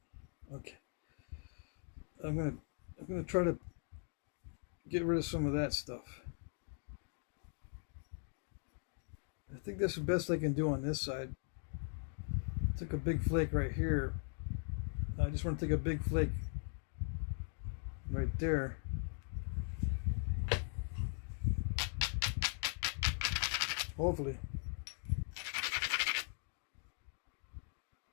Okay. I'm gonna try to get rid of some of that stuff. I think that's the best I can do on this side. Took a big flake right here. I just want to take a big flake right there. Hopefully.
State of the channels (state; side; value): silent; right; 51 dB below the other